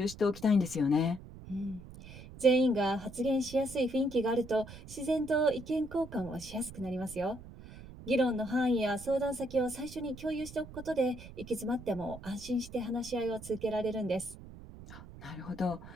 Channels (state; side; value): noise; right; rumble, 15 dB below the sound